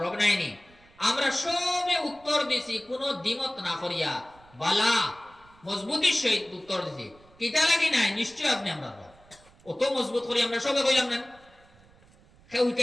রব নাইনি। আমরা সবে উত্তর দিছি কোনো দ্বিমত না করিয়া, বালা মজবুতির সহিত উত্তর দিছি। কিতা লাগি নাই, নিশ্চয় আপনি আমরা রব। অত মজবুত করি আমরা সবে কইলাম না, কেউ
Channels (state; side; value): noise; right; rumble, 27 dB below the sound